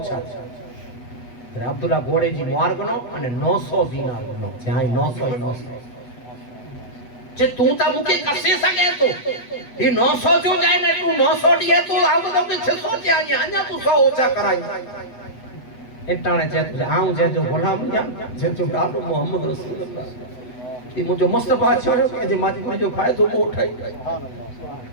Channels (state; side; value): late; right; 8.1 ms